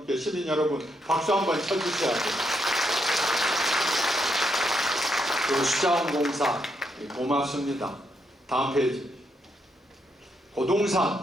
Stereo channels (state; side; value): normal; both; correlation 0.78